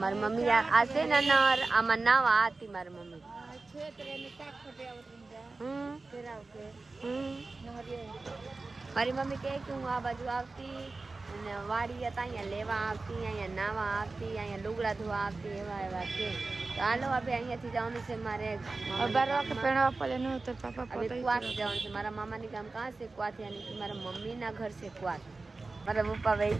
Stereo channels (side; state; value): left; quieter; 3.6 dB